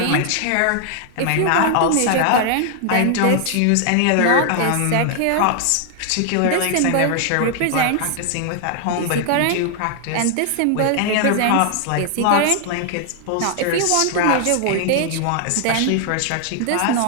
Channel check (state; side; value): different; both; correlation 0.00